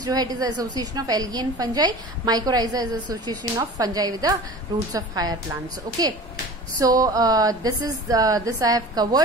जो है it is association of algae and fungi, mycorrhiza is association of fungi with the roots of higher plants, okay. So this I have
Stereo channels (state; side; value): normal; both; correlation 0.38